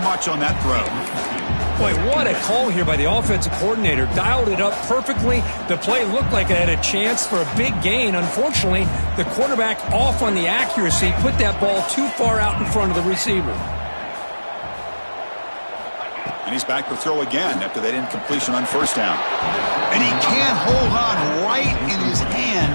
much on that throw. Boy, what a call here by the offensive coordinator. Dialed it up perfectly. The play looked like it had a chance for a big gain. Unfortunately, the quarterback off on the accuracy, put that ball too far out in front of the receiver. And he's back to throw again after that incompletion on first down. And he can't hold on right in his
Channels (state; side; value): inverted; both; correlation -1.00